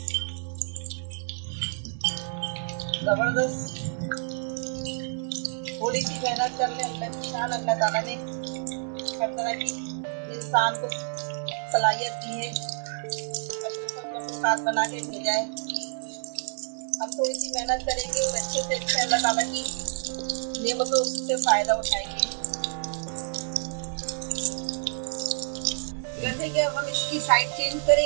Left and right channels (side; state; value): left; silent; digital silence